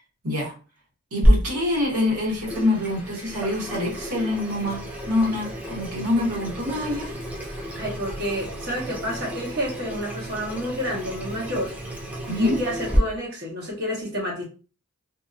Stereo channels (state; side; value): normal; both; correlation 0.58